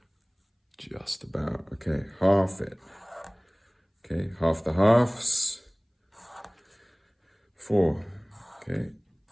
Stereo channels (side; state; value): both; identical; correlation 1.00